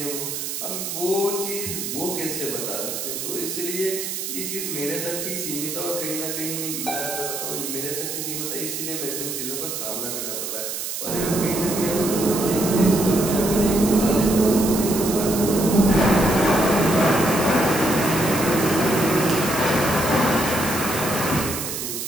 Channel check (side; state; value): right; noise; hiss, 5 dB below the sound